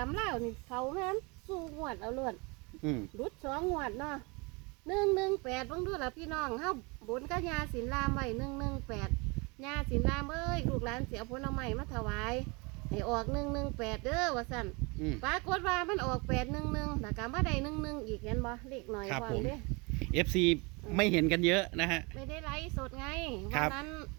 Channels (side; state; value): left; quieter; 28.7 dB